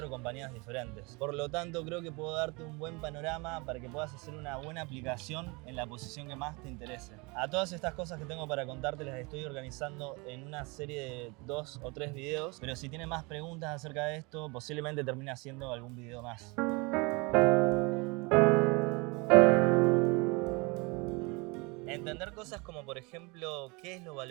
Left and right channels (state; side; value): quieter; left; 27.8 dB